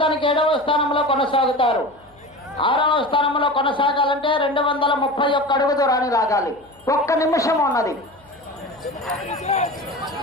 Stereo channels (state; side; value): noise; left; hum, 30 dB below the sound